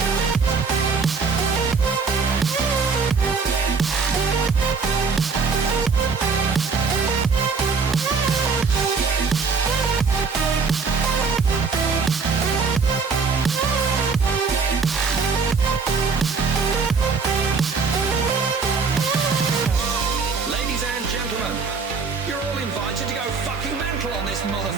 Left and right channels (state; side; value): quieter; left; 5.0 dB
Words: Ladies and gentlemen, you're all invited to go fucking mental on this